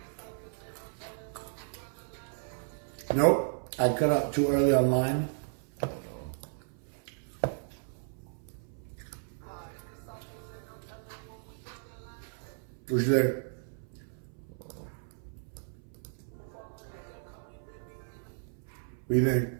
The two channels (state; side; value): silent; left; 55 dB below the other